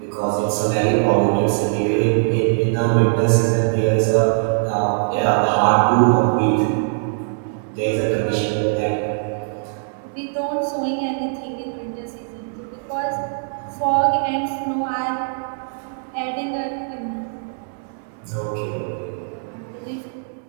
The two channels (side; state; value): left; silent; digital silence